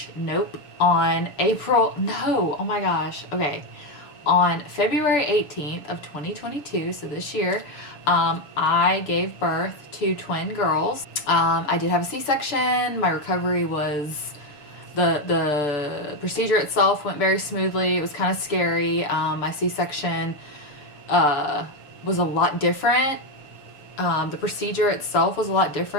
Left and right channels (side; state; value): right; late; 6.8 ms